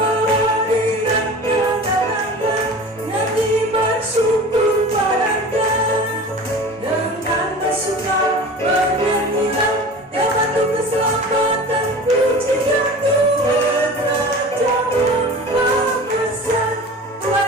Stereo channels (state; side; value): normal; both; correlation 0.38